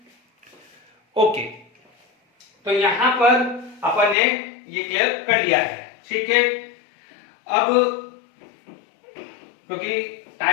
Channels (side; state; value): right; drops out; at 4.2 s